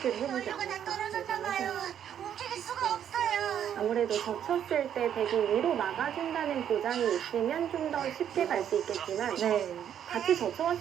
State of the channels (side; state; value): left; quieter; 9.5 dB